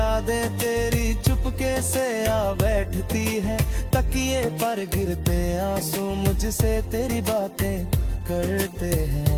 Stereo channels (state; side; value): identical; both; correlation 1.00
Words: तेरी चुपके से आ बैठती है, तकिए पर गिरते आंसू मुझसे तेरी बातें करते